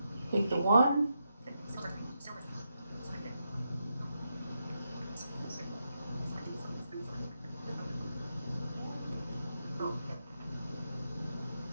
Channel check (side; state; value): both; inverted; correlation -0.84